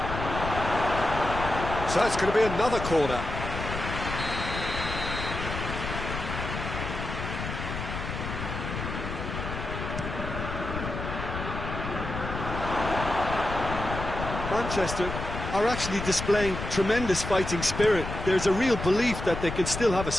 So it's going to be another corner. Manchester are actually displaying tremendous fighting spirit. There's a real belief that they can still have a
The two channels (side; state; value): left; noise; rumble, 6 dB below the sound